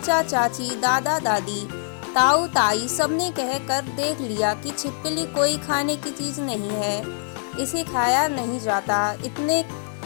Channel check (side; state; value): right; silent; digital silence